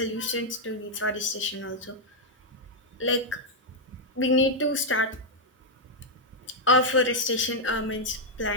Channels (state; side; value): normal; both; correlation -0.03